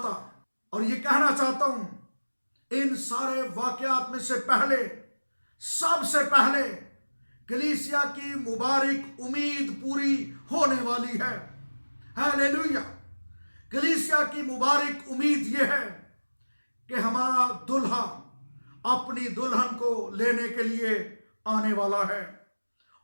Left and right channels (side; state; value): both; inverted; correlation -1.00